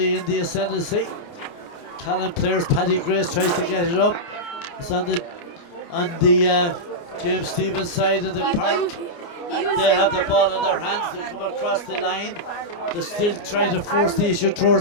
in the ascendancy. Callan players, Paddy Grace tries to get it up. It's on the James Stevens side of the park. They have the ball in their hands. They come across the line. They're still trying to force the issue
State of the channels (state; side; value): late; right; 29 ms